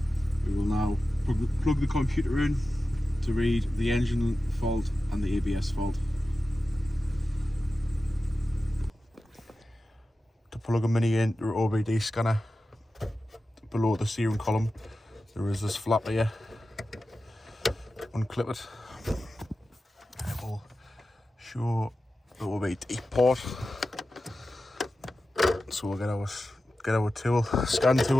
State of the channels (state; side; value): normal; both; correlation 0.93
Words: We will now plug the computer in to read the engine fault and the ABS fault. To plug a mini into an OBD scanner, below the steering column there is this flap here. Unclip it. It will show the OBD port. So we'll get our tool, scan